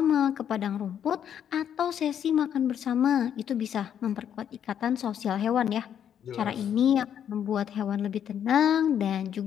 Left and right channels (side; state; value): right; quieter; 9.2 dB